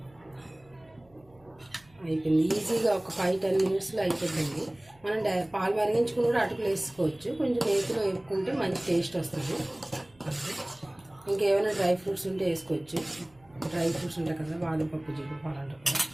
అయిపోయింది. ఈజీగా ఒక 5-10 మినిట్స్లో అయిపోతుంది. మనం పాలు మరిగించుకుని కూడా అటుకులు వేసుకోవచ్చు. కొంచెం నేతిలో వేపుకుంటే మంచి టేస్ట్ వస్తుంది. ఇంకేమైనా డ్రై ఫ్రూట్స్ ఉంటే వేసుకోవచ్చు. డ్రై ఫ్రూట్స్ ఉంటాయి కదా, బాదం పప్పు, జీడిపప్పు అలాంటివి కూడా.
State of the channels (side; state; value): right; noise; hum, 30 dB below the sound